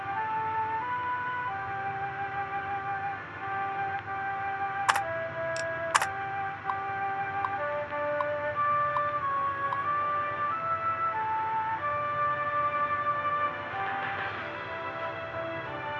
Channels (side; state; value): both; identical; correlation 1.00